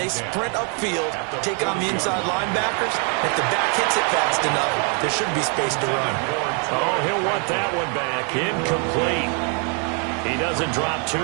sprint upfield, take on the inside linebackers. If the back hits it fast enough, there should be space to run. Oh, he'll want that one back. Incomplete. He doesn't drop too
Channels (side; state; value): left; quieter; 37.9 dB